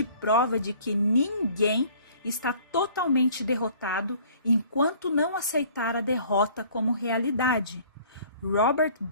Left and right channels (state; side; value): inverted; both; correlation -0.53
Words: prova de que ninguém está totalmente derrotado enquanto não aceitar a derrota como realidade. Robert